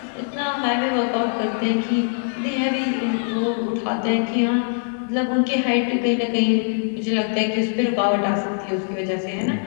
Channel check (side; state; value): right; silent; digital silence